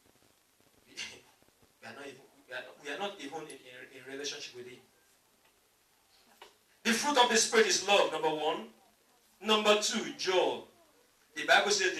we are not even in relationship with Him. The fruit of the Spirit is love, number one. Number two, joy. The Bible says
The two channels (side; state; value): both; identical; correlation 1.00